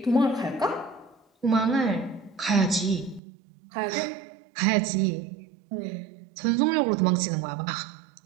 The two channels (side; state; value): left; drops out; at 3.2 s